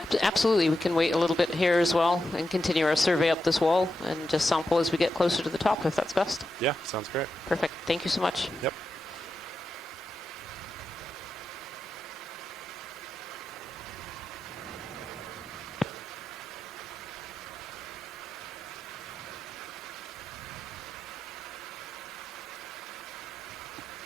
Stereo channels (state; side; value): normal; both; correlation 0.89